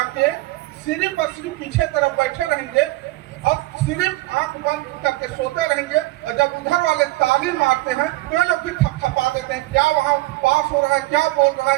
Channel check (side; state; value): left; quieter; 19.6 dB